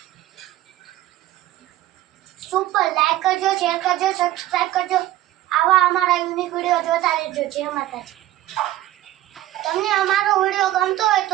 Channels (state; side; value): quieter; left; 14.9 dB